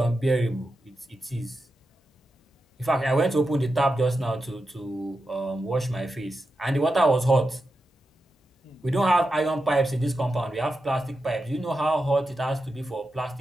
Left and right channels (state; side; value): normal; both; correlation 0.89